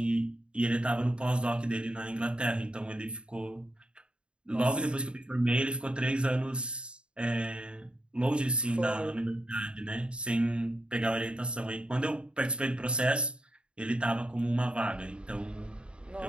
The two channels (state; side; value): late; left; 0.054 ms